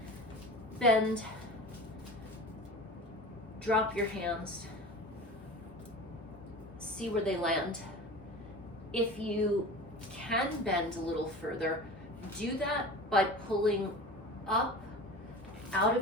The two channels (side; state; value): both; normal; correlation 0.35